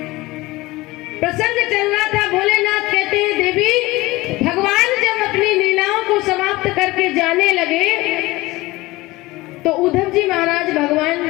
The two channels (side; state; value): right; quieter; 20.1 dB